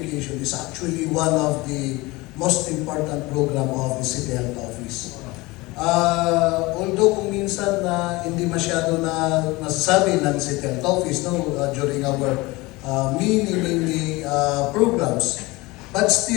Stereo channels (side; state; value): right; quieter; 22.3 dB